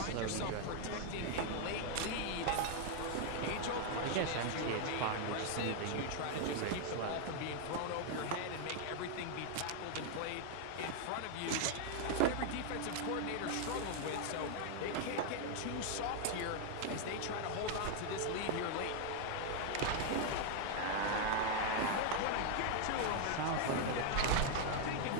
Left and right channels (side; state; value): both; different; correlation 0.00